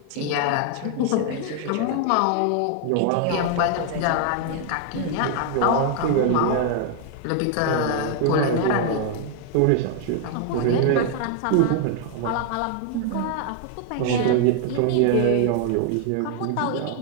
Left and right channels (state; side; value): different; both; correlation 0.00